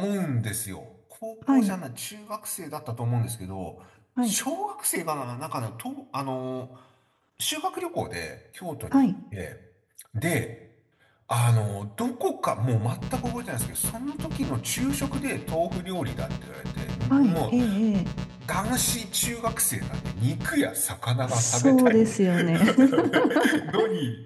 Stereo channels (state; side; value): identical; both; correlation 1.00